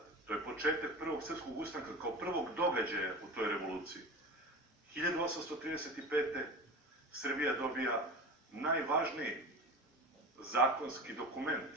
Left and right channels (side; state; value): both; normal; correlation 0.30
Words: to je početak prvog srpskog ustanka kao prvog događaja u toj revoluciji. 1835. Srbija dobija najvažniji zakonski dokument